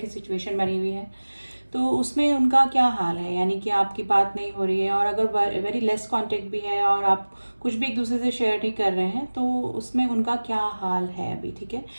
की सिचुएशन बनी हुई है तो उसमें उनका क्या हाल है, यानी कि आपकी बात नहीं हो रही है और अगर वेरी लेस कांटेक्ट भी है और आप कुछ भी एक दूसरे से शेयर नहीं कर रहे हैं तो उसमें उनका क्या हाल है अभी। ठीक है,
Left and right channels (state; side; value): inverted; both; correlation -1.00